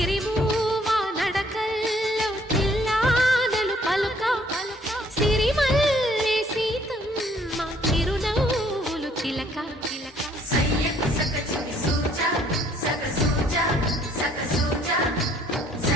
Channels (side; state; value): both; normal; correlation 0.62